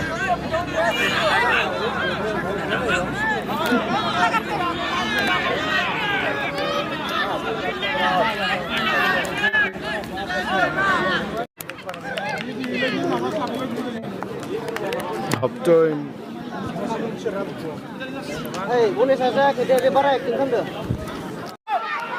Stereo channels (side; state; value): both; identical; correlation 1.00